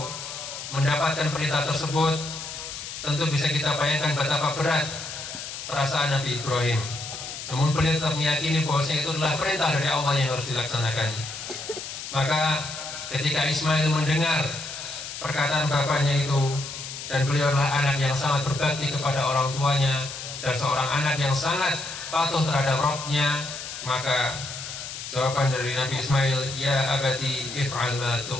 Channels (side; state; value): left; noise; hiss, 9 dB below the sound